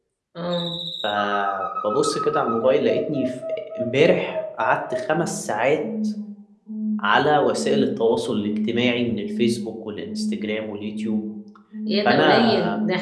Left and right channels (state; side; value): identical; both; correlation 1.00